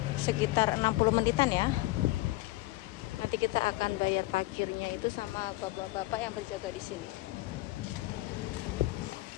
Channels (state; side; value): quieter; right; 19.4 dB